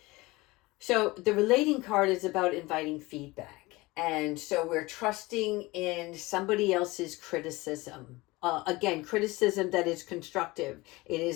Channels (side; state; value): right; quieter; 21.6 dB